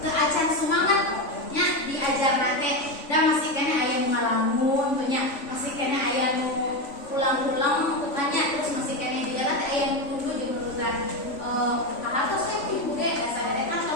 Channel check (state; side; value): late; right; 3.5 ms